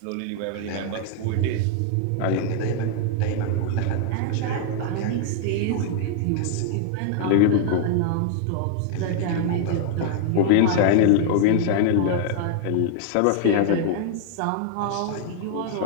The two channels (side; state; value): both; different; correlation 0.00